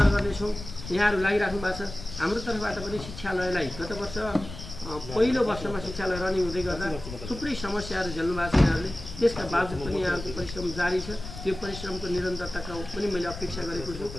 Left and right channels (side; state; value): left; noise; rumble, 11 dB below the sound